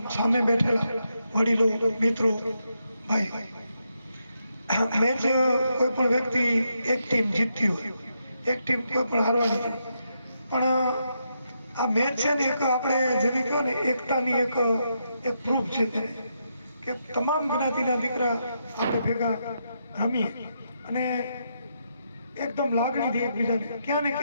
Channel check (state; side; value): inverted; both; correlation -0.81